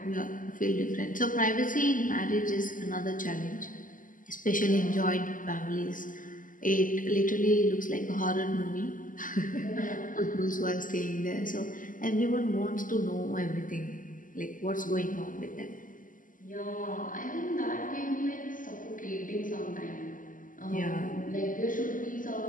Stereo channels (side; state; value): right; late; 0.38 ms